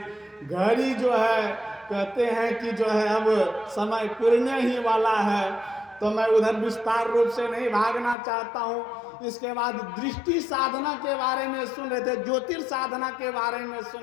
घड़ी जो है, कहते हैं कि जो है अब समय पुरने ही वाला है, तो मैं उधर विस्तार रूप से नहीं भागना चाहता हूँ। इसके बाद दृष्टि साधना के बारे में सुन रहे थे, ज्योतिर् साधना के बारे में सुन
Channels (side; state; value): right; drops out; at 8.2 s